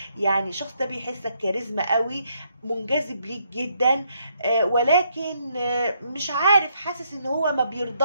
يعني الشخص ده بيحسك كاريزما قوي، منجذب ليك جدا، ولكن مش عارف، حاسس ان هو ما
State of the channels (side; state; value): both; inverted; correlation -0.74